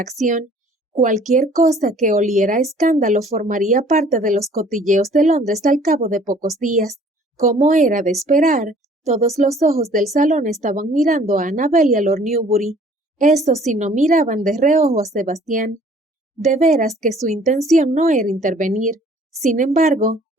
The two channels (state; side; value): normal; both; correlation 0.54